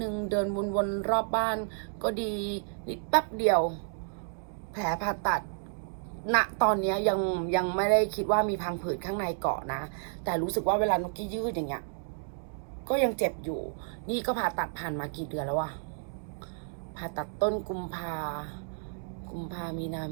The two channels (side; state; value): left; silent; digital silence